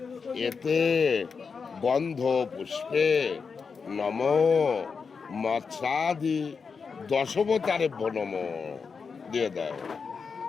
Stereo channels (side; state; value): right; quieter; 5.4 dB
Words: এতে গন্ধ পুষ্পে নম মৎস্যাদি দশবতারেভ্য নম দিয়ে দাও।